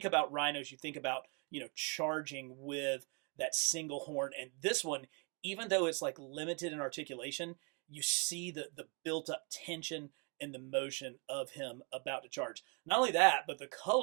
about rhinos, you think about, charging with that single horn. And this one, even though it's like limited in articulation, you see the built up tension and the motion of him about to charge. Not only that, but the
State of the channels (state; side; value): quieter; left; 34.1 dB